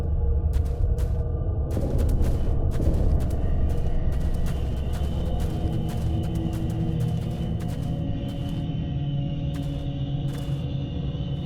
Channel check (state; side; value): identical; both; correlation 1.00